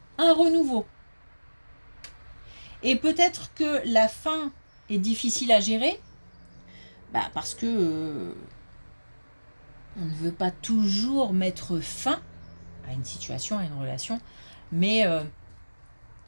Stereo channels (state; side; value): inverted; both; correlation -1.00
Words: un renouveau. Et peut-être que la fin est difficile à gérer, parce que on ne veut pas toujours mettre fin à une situation, à une relation, mais